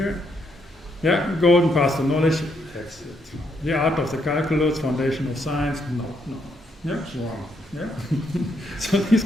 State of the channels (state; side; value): normal; both; correlation 0.76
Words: Yeah, golden path to knowledge. That's it. The art of the calculus, foundation of science. No. Yeah, wrong. Yeah. So these